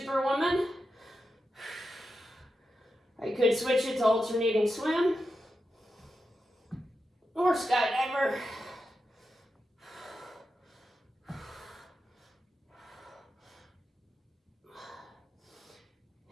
I could switch it to alternating swim or skydiver.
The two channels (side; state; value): both; normal; correlation 0.89